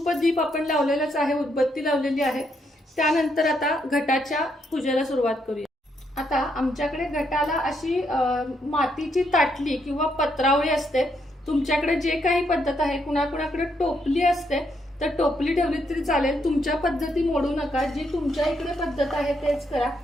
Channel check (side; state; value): both; normal; correlation 0.76